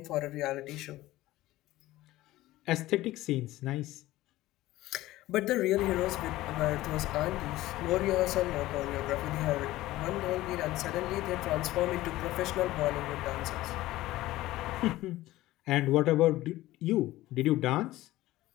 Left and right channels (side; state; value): right; quieter; 16.7 dB